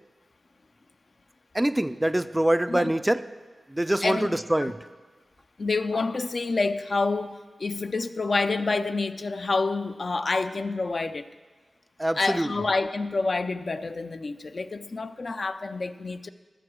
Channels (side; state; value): both; normal; correlation 0.96